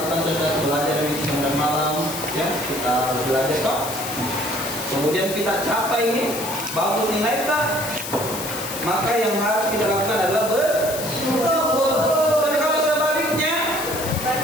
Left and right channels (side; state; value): left; noise; hiss, 8 dB below the sound